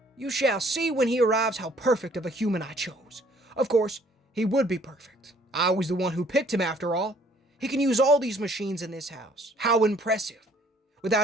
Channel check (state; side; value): normal; both; correlation 0.60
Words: you shall see when he arrives how perfect of a human I chose. Of course, he would be perfect. I was the one who picked him after all. He can use all these machines in this house. How impressive.